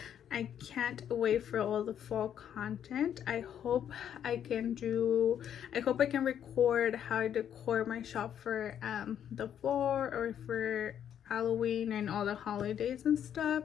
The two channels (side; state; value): right; quieter; 9.4 dB